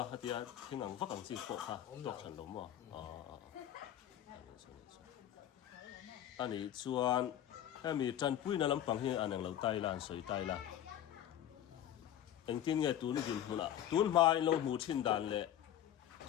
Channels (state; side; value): quieter; right; 11.2 dB